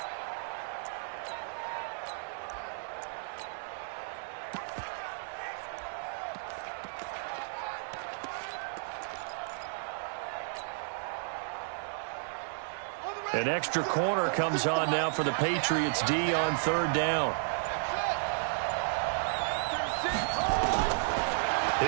An extra corner comes on now for the Patriots D on 3rd down.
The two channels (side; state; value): left; silent; digital silence